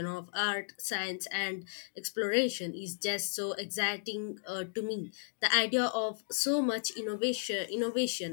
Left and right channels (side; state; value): right; silent; digital silence